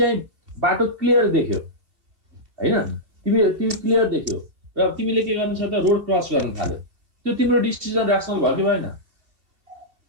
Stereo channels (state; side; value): late; left; 2.6 ms